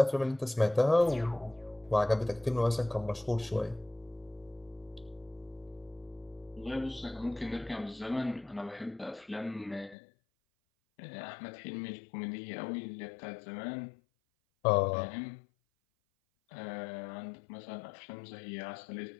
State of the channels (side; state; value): right; drops out; at 10.0 s